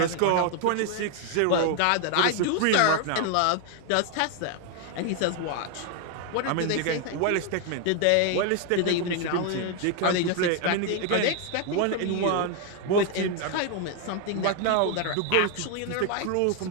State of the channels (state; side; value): different; both; correlation 0.00